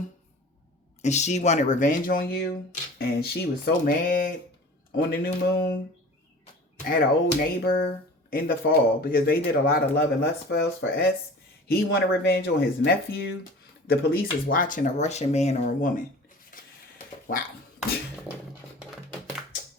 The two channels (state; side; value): normal; both; correlation 0.41